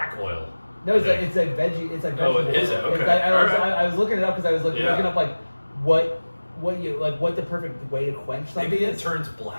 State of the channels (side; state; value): both; inverted; correlation -1.00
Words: oil. No, it's like veggie. It's like vegetable. Oh, is it? Okay. I was looking it up because I was looking up like what the perfect way to quench something. Maybe it turns